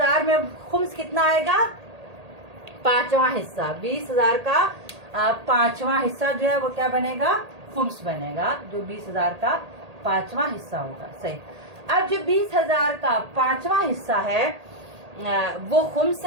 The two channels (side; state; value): left; late; 1.8 ms